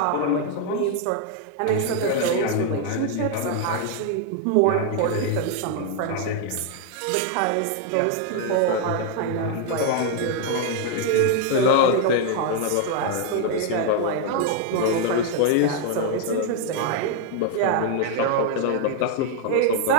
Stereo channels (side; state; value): both; different; correlation 0.00